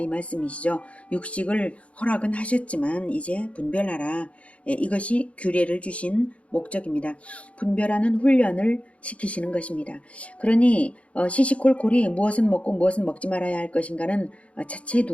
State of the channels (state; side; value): late; right; 0.063 ms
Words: 말씀이시죠. 육식을 허락은 하셨지만 이제 분별하라. 이것이 규례를 주신 목적입니다. 분별하는 훈련을 시키시는 것입니다. 그러니 시시콜콜이 무엇은 먹고 무엇은 먹지 말아야 할 것인가는 차치해